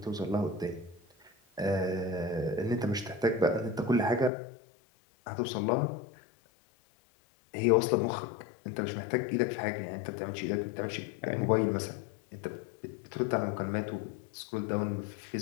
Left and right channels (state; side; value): drops out; right; at 4.3 s